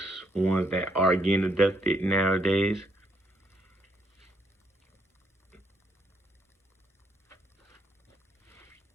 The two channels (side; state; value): both; normal; correlation 0.73